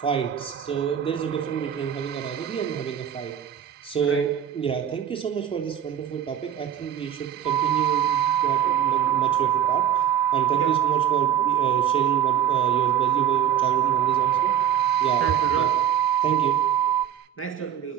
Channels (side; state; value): left; quieter; 9.6 dB